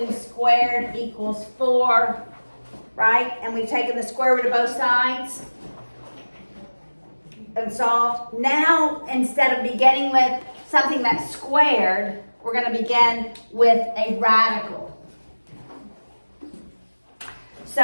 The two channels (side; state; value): both; inverted; correlation -1.00